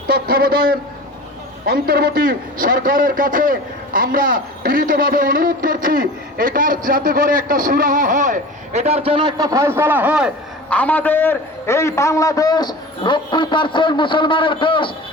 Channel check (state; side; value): normal; both; correlation 0.37